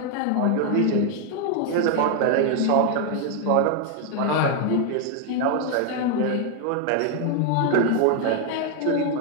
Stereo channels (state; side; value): different; both; correlation 0.00